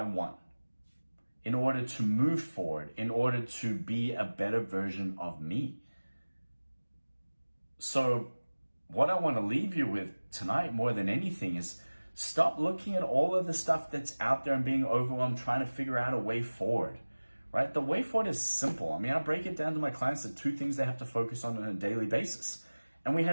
want, in order to move forward, in order to be a better version of me. So what I want to leave you with tonight more than anything is stop looking at all of the stuff that's out there and being overwhelmed, trying to figure out a way forward, right? The way forward is simple. I break it down to my clients to 2 things they have to focus on a daily basis. And we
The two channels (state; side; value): inverted; both; correlation -1.00